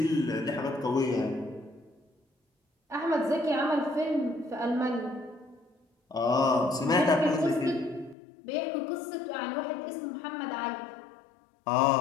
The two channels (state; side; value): drops out; right; at 8.2 s